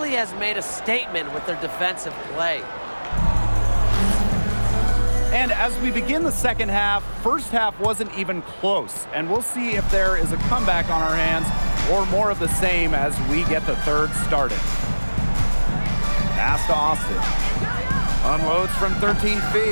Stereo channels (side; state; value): both; inverted; correlation -1.00